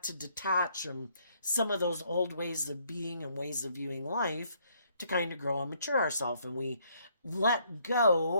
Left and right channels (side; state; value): both; inverted; correlation -0.68